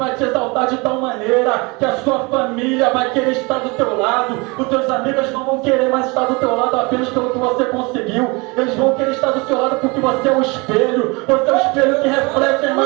te exaltar de tal maneira que a sua família vai querer estar do teu lado, os teus amigos não vão querer mais estar do teu lado apenas pelo que você conseguiu, eles vão querer estar do seu lado porque você é o espelho, você é o espelho que reflete a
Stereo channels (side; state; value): left; quieter; 27.2 dB